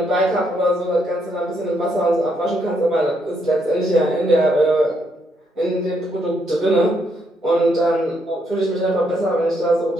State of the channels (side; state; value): both; normal; correlation 0.75